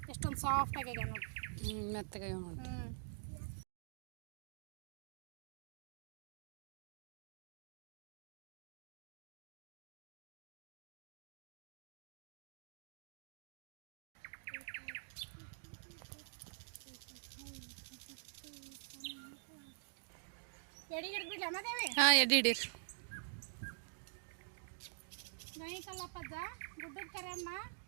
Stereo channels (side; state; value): left; silent; digital silence